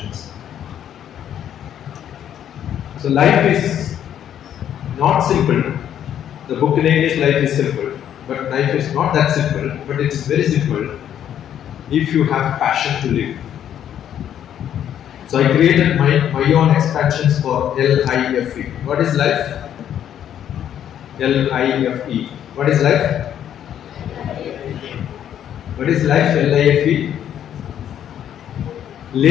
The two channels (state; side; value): quieter; right; 10.1 dB